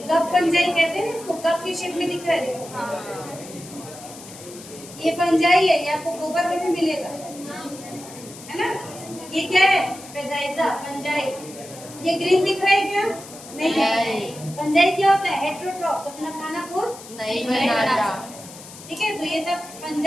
कप फंजाई कहते हैं इसको, कप की शेप में दिख रहा है, देखो ये फंजाई है, ये आपको गोबर में भी मिलेगा, है ना। ये क्या है, पेदाइजा, फंजाई। ये ग्रीन दिख रहा है क्या, नहीं है। फंजाई क्या होता है, हेटेरोट्रॉफ, अपना खाना खुद नहीं बनाता, ठीक है। तो ये सब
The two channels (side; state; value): left; noise; hiss, 16 dB below the sound